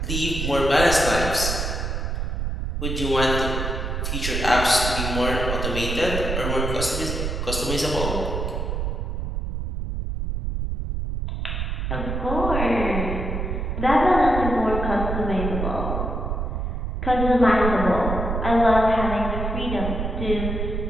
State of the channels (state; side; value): noise; right; rumble, 2 dB below the sound